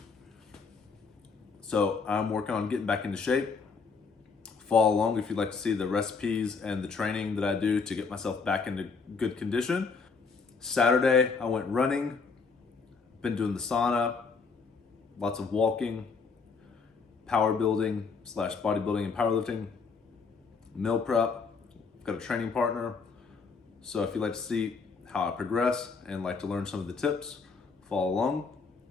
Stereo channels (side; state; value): right; quieter; 4.9 dB